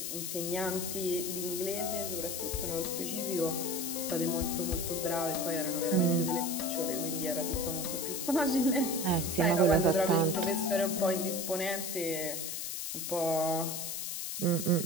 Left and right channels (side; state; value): left; noise; hiss, 4 dB below the sound